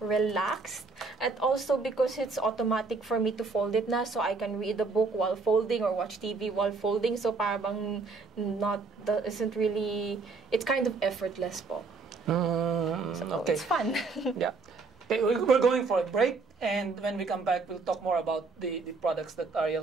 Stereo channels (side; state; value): left; quieter; 4.2 dB